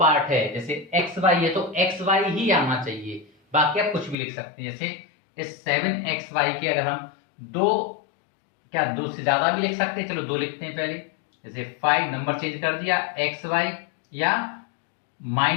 है, जैसे xy है तो xy ही आना चाहिए, बाकी आप कुछ भी लिख सकते हैं। जैसे इस 7xy के अगर हम दो से ज्यादा भी लिख सकते हैं, चलो दो लिखते हैं पहले। जैसे 5 नंबर चेंज कर दिया, xy या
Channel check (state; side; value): drops out; right; at 4.2 s